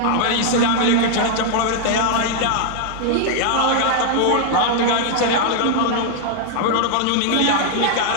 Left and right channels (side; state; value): both; different; correlation 0.00